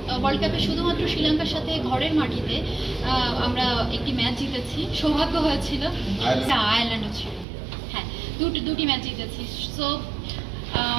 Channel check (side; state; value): left; drops out; at 7.5 s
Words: ওয়ার্ল্ড কাপে শুধুমাত্র শ্রীলঙ্কার সাথে ঘরের মাটিতে আমরা একটি ম্যাচ জিতেছি, সৌভাগ্য হয়েছিল। আয়ারল্যান্ডও ছিল, হ্যাঁ, দুটি ম্যাচ জিতেছি। সো